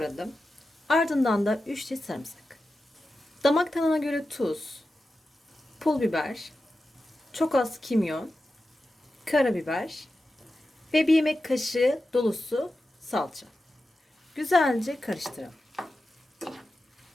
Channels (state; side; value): normal; both; correlation 0.92